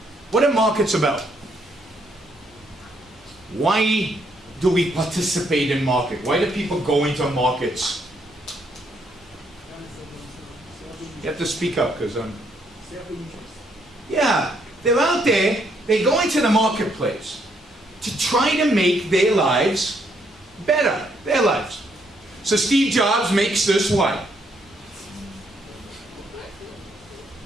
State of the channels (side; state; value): both; normal; correlation 0.72